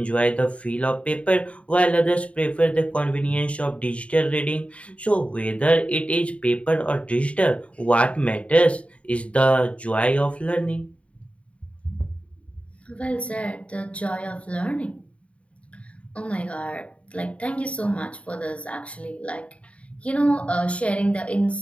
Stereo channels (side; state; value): right; late; 0.063 ms